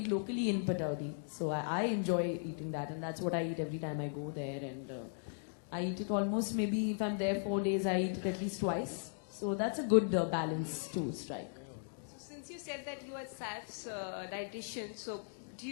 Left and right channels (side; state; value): right; silent; digital silence